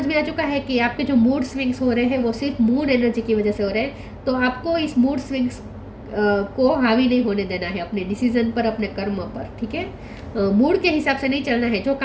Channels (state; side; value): identical; both; correlation 1.00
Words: में आ चुका है कि आपके जो मूड स्विंग्स हो रहे हैं वो सिर्फ मून एनर्जी की वजह से हो रहे हैं, तो आपको इस मूड स्विंग्स को हावी नहीं होने देना है अपने डिसीजन पर, अपने कर्म पर, ठीक है। मूड के हिसाब से नहीं चलना है, जो